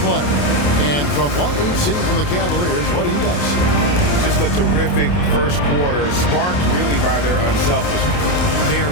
And from what we've seen from the Cavaliers, what do you guys see? Just a terrific first quarter, sparked really by their unselfishness. They are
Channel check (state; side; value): late; right; 28 ms